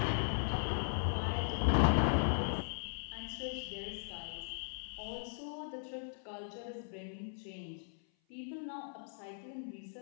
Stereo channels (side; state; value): right; silent; 52 dB below the other